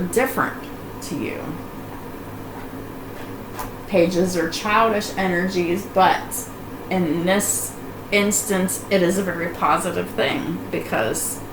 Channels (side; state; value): both; identical; correlation 1.00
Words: different to you. Pages are childish energies, but in this instance, it is a very positive thing, because